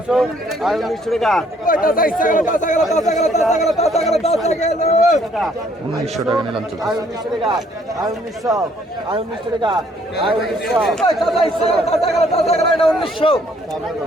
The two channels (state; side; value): normal; both; correlation 0.64